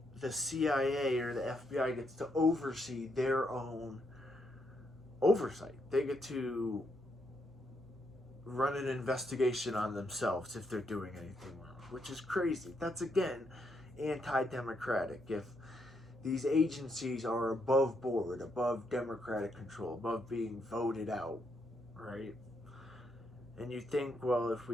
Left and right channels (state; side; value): normal; both; correlation 0.78